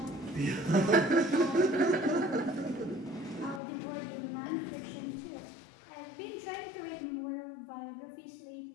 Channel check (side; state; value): right; drops out; at 3.6 s